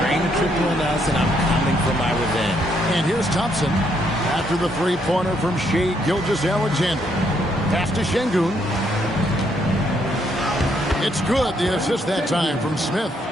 a triple on us, and I'm coming for my revenge. And here's Thompson after the three-pointer from Shai Gilgeous-Alexander. Pass to Şengün. It's good. The assist that time from Smith.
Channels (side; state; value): both; normal; correlation 0.73